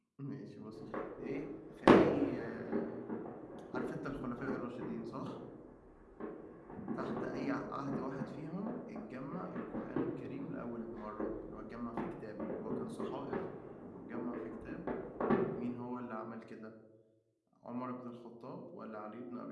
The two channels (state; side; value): identical; both; correlation 1.00